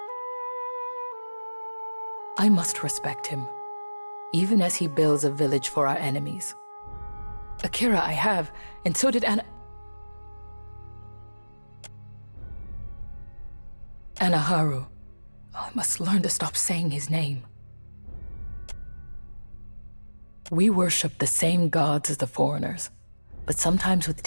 I must respect him, even as he builds a village for our enemies. Akira I have, and so did Anaharu. I must learn to stop saying his name. We worship the same gods as the foreigners, but sometimes with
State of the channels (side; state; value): both; inverted; correlation -1.00